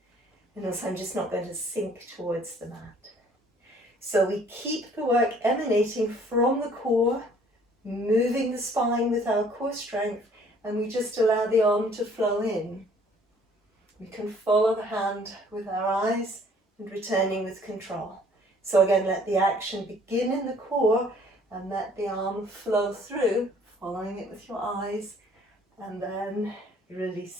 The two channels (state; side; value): normal; both; correlation 0.57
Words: and also I'm just not going to sink towards the mat. So we keep the work emanating from the core, moving the spine with our core strength, and we just allow the arm to flow in. We can follow the hand with our eyes and returning with control. So again, let the action begin in the core and let the arm flow through, following it with your eyes, and then